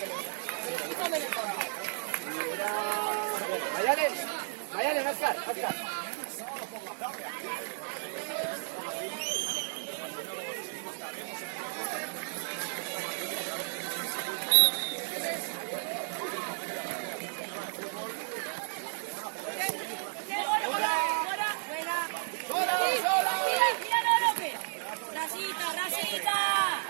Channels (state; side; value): silent; left; 56 dB below the other